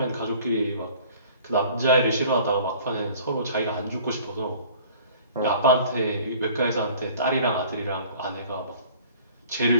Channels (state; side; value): inverted; both; correlation -0.49